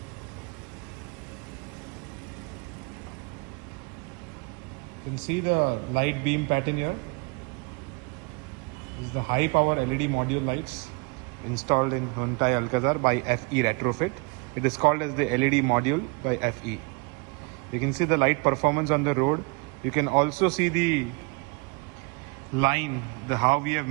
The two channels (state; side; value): quieter; left; 29.7 dB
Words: You can see the light beam pattern here. This is the high power LED module lights installed in Hyundai Alcazar by FE Retrofit. It is called as the LED module by FE. You can see the light performance on the road. You can also see the line, how we have